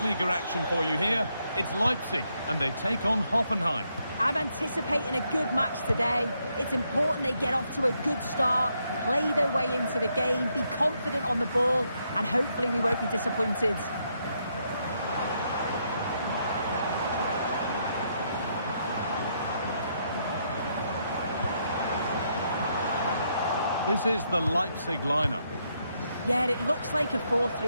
action for you here. It's Leipzig and they take on Hoffenheim. I'm anticipating a good match today. It's important they get off to a good start, play their way into the game, be confident on the ball, and hopefully we won't be disappointed. This is the Leipzig lineup. Yeah, it looks like a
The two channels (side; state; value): both; inverted; correlation -0.77